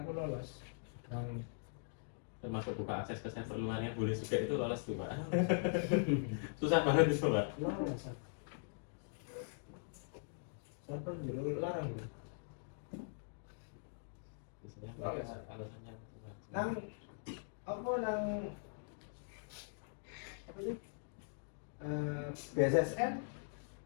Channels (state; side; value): silent; right; digital silence